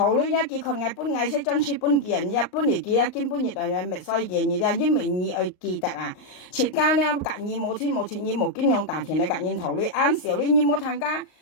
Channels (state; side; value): late; right; 38 ms